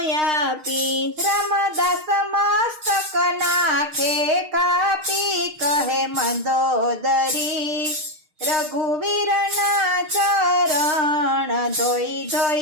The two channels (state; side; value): late; left; 6.5 ms